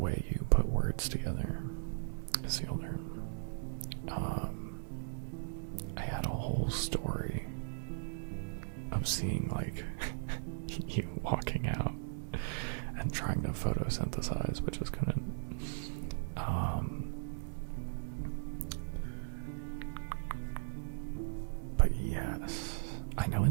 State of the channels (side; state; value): left; silent; digital silence